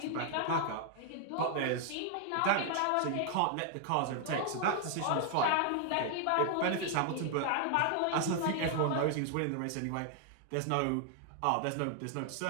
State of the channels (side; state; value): both; different; correlation 0.00